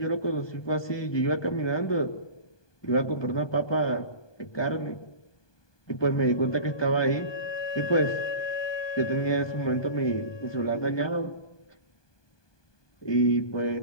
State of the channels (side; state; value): right; late; 1.2 ms